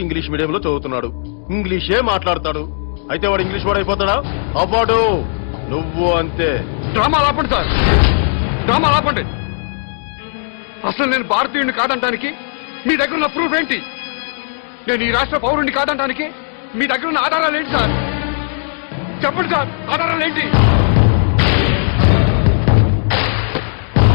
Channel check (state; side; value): silent; right; digital silence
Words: ఇంగ్లీష్ మీడియంలో చదువుతున్నాడు, ఇంగ్లీషే మాట్లాడతాడు. అయితే వాడు ఇంగ్లీష్ వాడు అయిపోతాడా? అవ్వడు. నువ్వు అంతే. డ్రామా ఆపండి సార్, డ్రామా ఆపండి. అసలు నేను భారతీయుడిని కాదంటానికి మీ దగ్గర ఉన్న ప్రూఫ్ ఏంటి? నేను ఈ రాష్ట్ర పౌరుడిని కాదంటానికి మీ దగ్గర ఉన్న ఆధారాలు ఏంటి సార్? చెప్పండి సార్, ఆధారాలు ఏంటి?